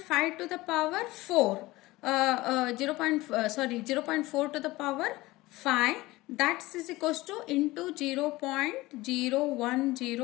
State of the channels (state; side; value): quieter; right; 19.5 dB